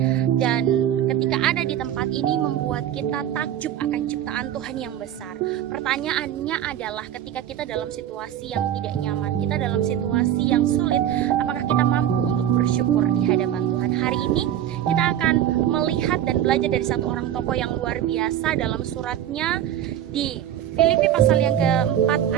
dan ketika ada di tempat ini membuat kita takjub akan ciptaan Tuhan yang besar. Pertanyaannya adalah, ketika kita dalam situasi yang tidak nyaman, kita dalam situasi yang sulit, apakah kita mampu untuk bersyukur di hadapan Tuhan? Hari ini kita akan melihat dan belajar dari satu orang tokoh yang luar biasa dalam suratnya di Filipi pasal yang keempat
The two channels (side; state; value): left; quieter; 10.9 dB